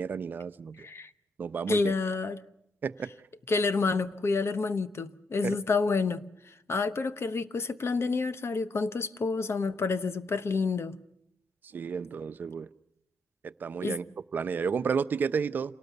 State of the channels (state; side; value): normal; both; correlation 0.76